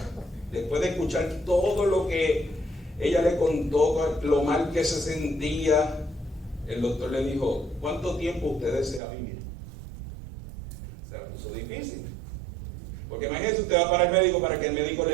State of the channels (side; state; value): left; drops out; at 9.0 s